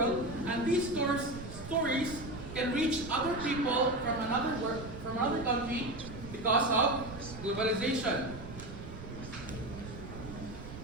and these stories can reach other people from another country because of globalization.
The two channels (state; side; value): noise; right; rumble, 12 dB below the sound